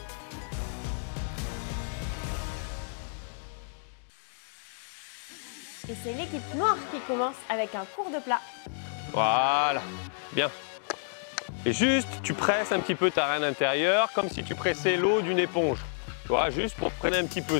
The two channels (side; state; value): right; silent; digital silence